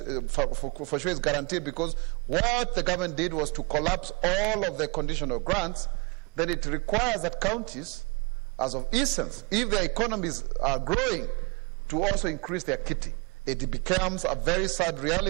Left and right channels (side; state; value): left; quieter; 29.6 dB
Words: for sure is guaranteed, because what the government did was to collapse all of the conditional grants. Then it requires that counties, as of essence, if their economies are growing, to also increase their kitty. It becomes a very sad